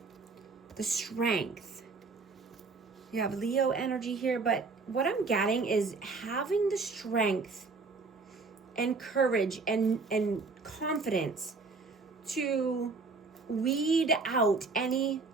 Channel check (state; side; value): quieter; left; 4.1 dB